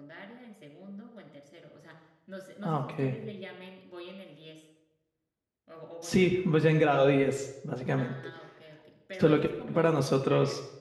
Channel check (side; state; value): both; identical; correlation 1.00